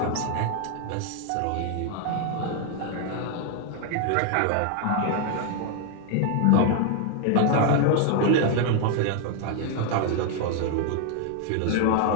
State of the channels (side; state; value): both; different; correlation 0.00